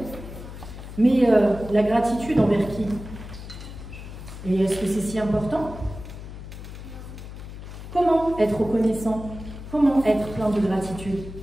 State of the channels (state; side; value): noise; left; hum, 12 dB below the sound